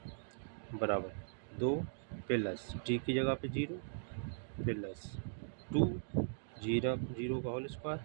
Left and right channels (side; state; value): left; silent; digital silence